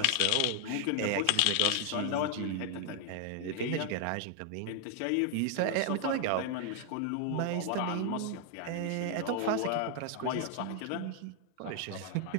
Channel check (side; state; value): both; different; correlation 0.00